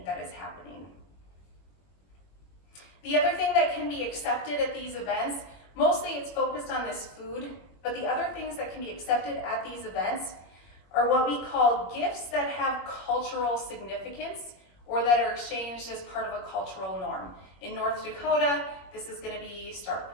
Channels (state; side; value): late; right; 21 ms